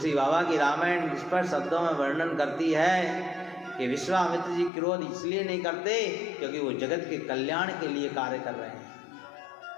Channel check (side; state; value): right; drops out; at 4.7 s